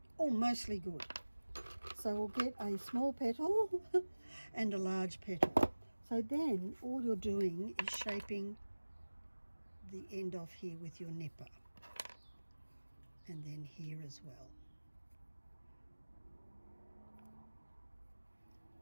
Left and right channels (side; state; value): both; inverted; correlation -1.00